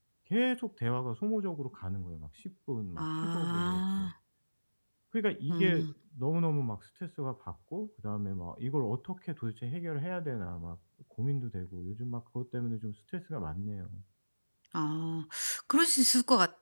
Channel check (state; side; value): inverted; both; correlation -1.00